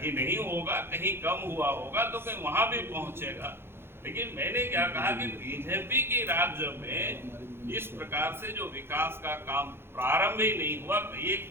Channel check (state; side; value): late; left; 0.11 ms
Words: नहीं होगा, कहीं कम हुआ होगा तो कहीं वहां भी पहुंचेगा। लेकिन मैंने क्या कहा कि बीजेपी के राज्य में इस प्रकार से जो विकास का काम प्रारंभ ही नहीं हुआ, कहीं